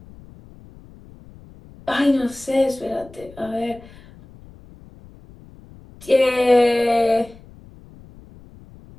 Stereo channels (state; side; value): noise; left; rumble, 22 dB below the sound